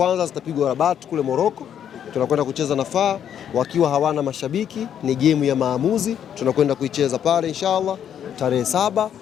zitapigwa Rabat kule Morocco. Tunakwenda kucheza na FAR wakiwa hawana mashabiki, ni game ya maamuzi, tunakwenda kuicheza pale inshallah tarehe 7.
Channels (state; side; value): quieter; right; 9.3 dB